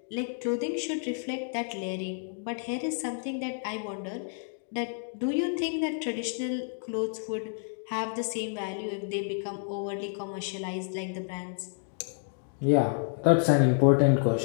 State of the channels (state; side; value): silent; right; digital silence